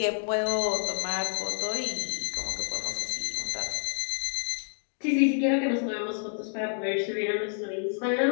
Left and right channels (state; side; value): silent; right; digital silence